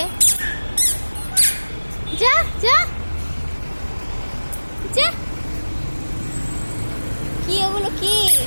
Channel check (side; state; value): both; inverted; correlation -1.00